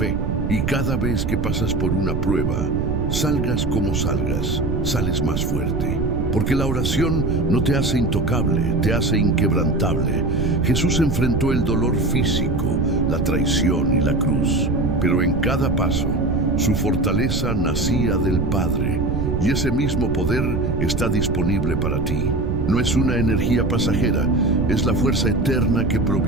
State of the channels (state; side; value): noise; right; rumble, 1 dB below the sound